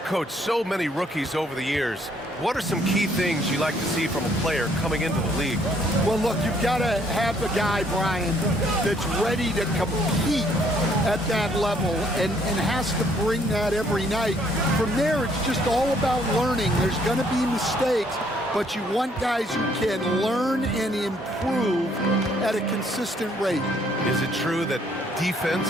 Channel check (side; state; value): both; normal; correlation 0.65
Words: coached so many rookies over the years. What are some key things you like to see from a player coming into the league? Well, look, you've got to have a guy, Brian, that's ready to compete at that level and has to bring that every night. From there, it's just all about learning. There's going to be mistakes, but you want guys who can learn and improve at a consistent rate. Is it true that defense